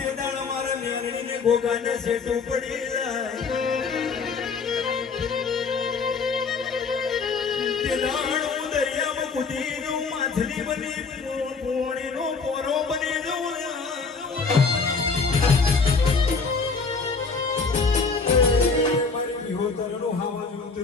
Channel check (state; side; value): quieter; right; 4.7 dB